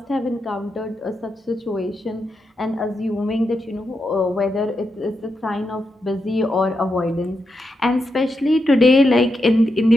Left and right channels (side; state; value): both; normal; correlation 0.85